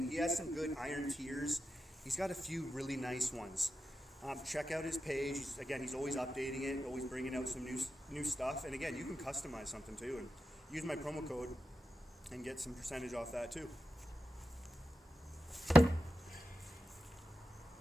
he has some good iron tiers. He's got a few really nice ones. Check out his page. He's always updating it, always bringing out some new stuff. And again, you can customize something too. And use my promo code and get some percentage off that too.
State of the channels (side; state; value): both; normal; correlation 0.90